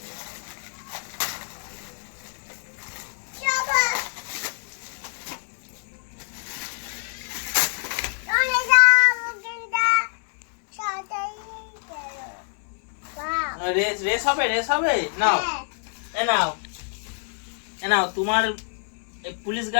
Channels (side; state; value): right; silent; 61 dB below the other